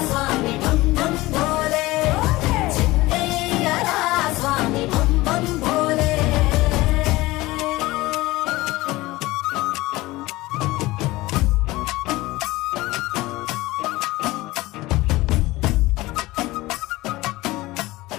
స్వామి భం భం భోలే చిందయ్యరా స్వామి భం భం భోలే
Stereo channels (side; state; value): right; quieter; 19.5 dB